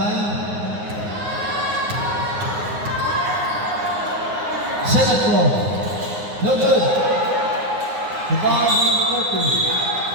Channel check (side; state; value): left; late; 9.6 ms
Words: Second floor. No good. The ball is number 2.